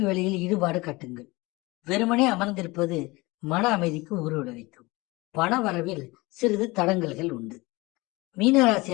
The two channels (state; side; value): quieter; right; 22.9 dB